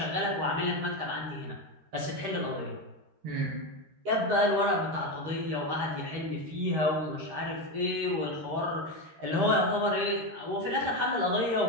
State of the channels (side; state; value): left; late; 13 ms